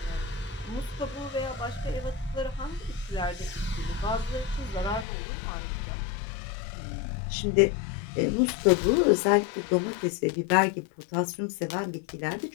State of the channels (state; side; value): drops out; right; at 5.1 s